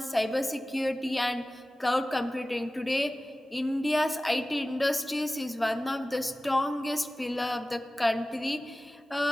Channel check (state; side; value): normal; both; correlation 0.97